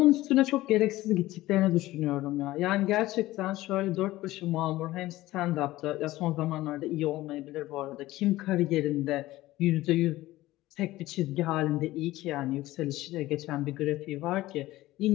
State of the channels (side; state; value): right; quieter; 17.0 dB